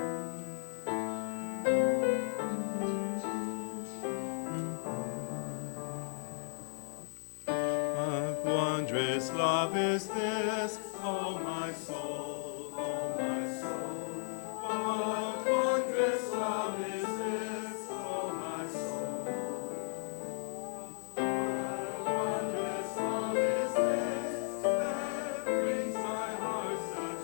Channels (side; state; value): right; silent; digital silence